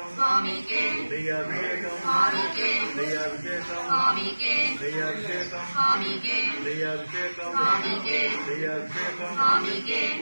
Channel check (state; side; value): inverted; both; correlation -1.00